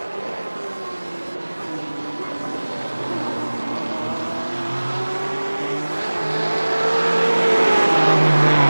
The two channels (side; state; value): both; inverted; correlation -1.00